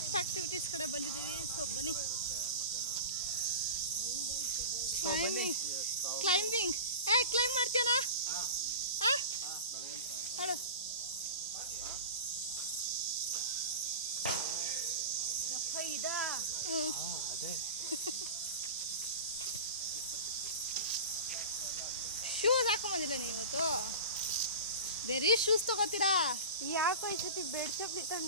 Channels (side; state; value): both; inverted; correlation -0.32